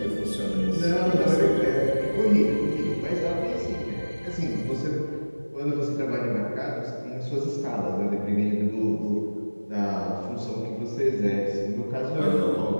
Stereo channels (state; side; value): inverted; both; correlation -1.00